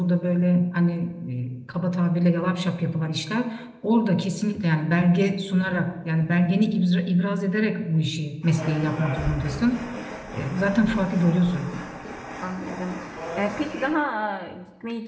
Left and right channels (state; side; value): identical; both; correlation 1.00